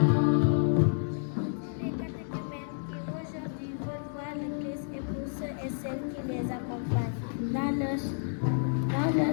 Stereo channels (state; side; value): silent; right; digital silence